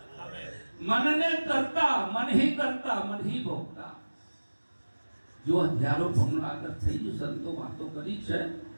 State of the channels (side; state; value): both; inverted; correlation -1.00